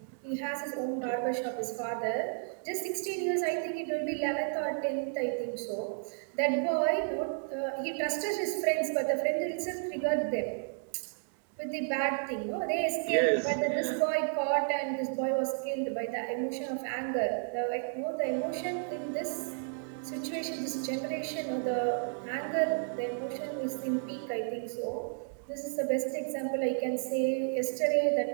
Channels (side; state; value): left; silent; digital silence